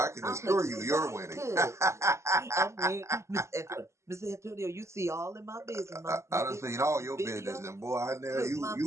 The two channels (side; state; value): left; late; 0.13 ms